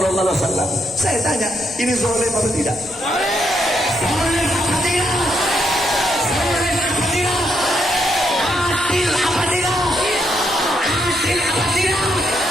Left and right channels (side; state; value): both; normal; correlation 0.77